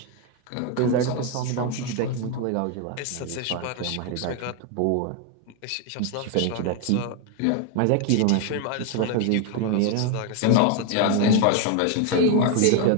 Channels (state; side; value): different; both; correlation 0.01